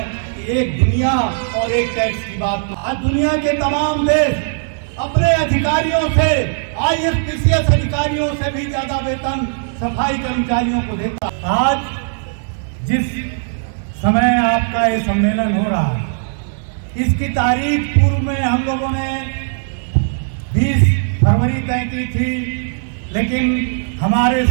कि एक दुनिया और एक टैक्स की बात। आज दुनिया के तमाम देश अपने अधिकारियों से, IAS-PCS अधिकारियों से भी ज्यादा वेतन सफाई कर्मचारियों को देता। आज जिस समय आपका ये सम्मेलन हो रहा है, इसकी तारीख पूर्व में हम लोगों ने 20 फरवरी तय की थी, लेकिन हमारे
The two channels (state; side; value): silent; left; digital silence